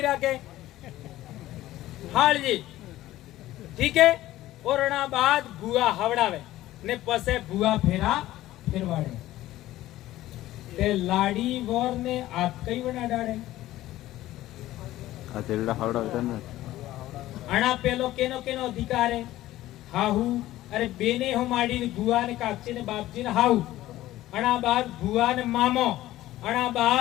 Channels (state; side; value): quieter; right; 15.3 dB